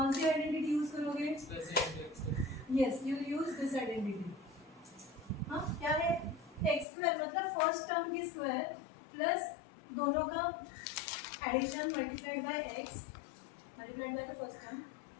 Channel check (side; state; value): right; drops out; at 6.9 s